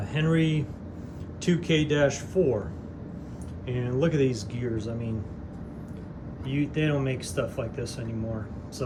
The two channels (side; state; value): both; identical; correlation 1.00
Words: Henry 2K-4. And look at these gears. I mean, they don't make stuff like this anymore.